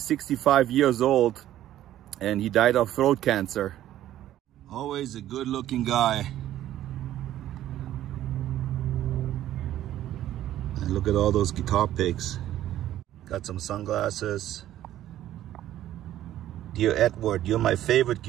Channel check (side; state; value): left; quieter; 12.8 dB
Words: years old and he died of throat cancer. Always a good looking guy. And look at all those guitar picks. Got some sunglasses. Dear Edward, you're my favorite